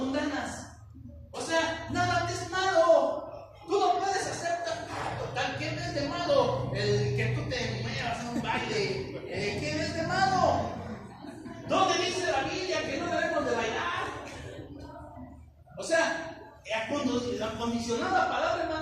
O sea, nada es malo. Tú no puedes hacer total. ¿Qué ves de malo? El que tú te muevas en un baile. ¿Qué ves de malo? ¿Dónde dice la Biblia que no debemos de bailar? O sea, acondicionar la palabra,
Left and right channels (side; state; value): both; identical; correlation 1.00